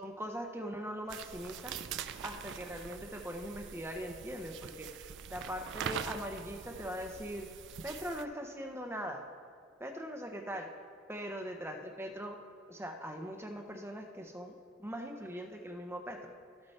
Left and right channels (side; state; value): both; normal; correlation 0.56